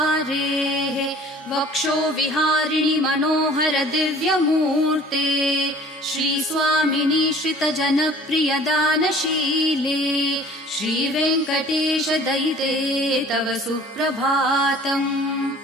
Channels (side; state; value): both; normal; correlation 0.49